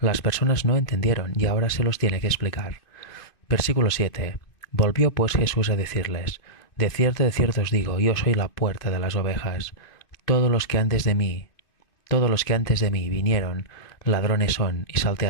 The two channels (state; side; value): late; right; 2.5 ms